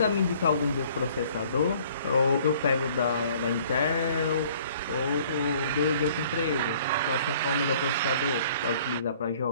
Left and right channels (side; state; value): both; inverted; correlation -0.56